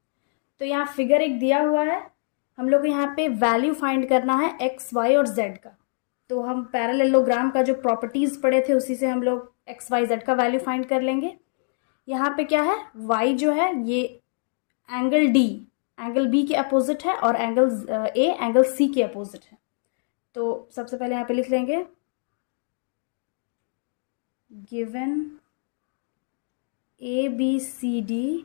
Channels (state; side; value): silent; right; digital silence